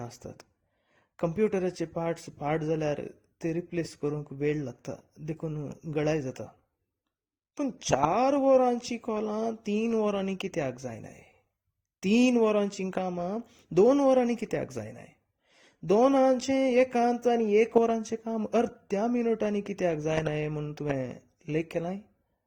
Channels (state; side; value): identical; both; correlation 1.00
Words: आसतात. कंप्युटराचे पार्ट्स पाड जाल्यार ते रिप्लेस करूंक वेळ लागता, देखून गळाय जाता. पूण 4 वरांची कॉलां 3 वरांनी कित्याक जायनाय? 3 वरांची कामां 2 वरांनी कित्याक जायनाय? 2 एकांत आनी 1 वरांचें काम अर्ध्या मिनटांनी कित्याक जायनाय म्हूण तुवें लेख केलाय?